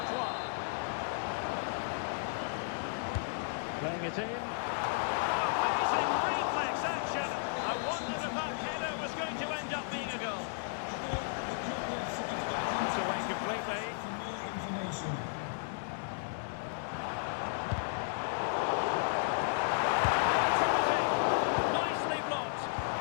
Playing it in. Oh, amazing reflex action. I wondered if that header was going to end up being a goal. It's away completely. For more information. Nicely blocked.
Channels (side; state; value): right; silent; digital silence